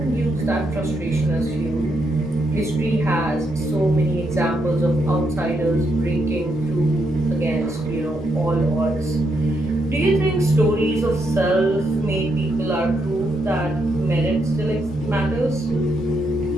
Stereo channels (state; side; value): normal; both; correlation 0.79